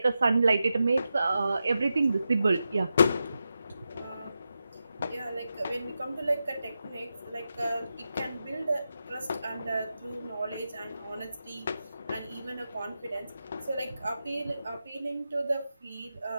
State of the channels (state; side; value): inverted; both; correlation -0.89